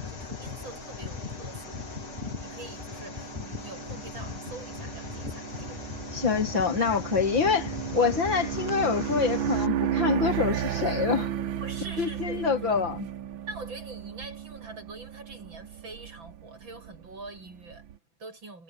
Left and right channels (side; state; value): left; late; 6.0 ms